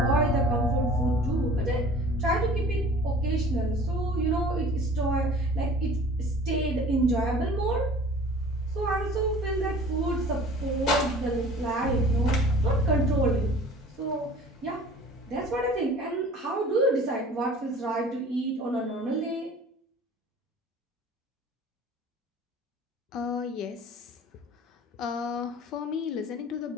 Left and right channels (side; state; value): both; normal; correlation 0.45